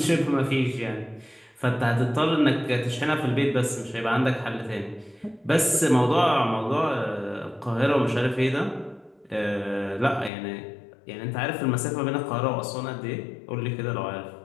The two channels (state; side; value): drops out; right; at 10.3 s